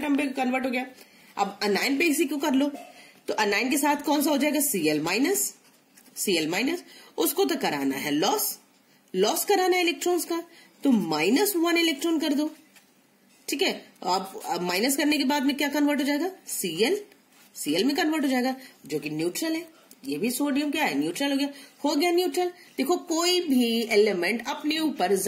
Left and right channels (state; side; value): identical; both; correlation 1.00